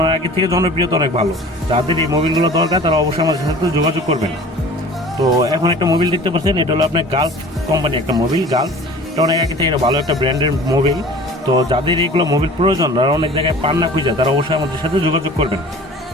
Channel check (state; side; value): normal; both; correlation 0.43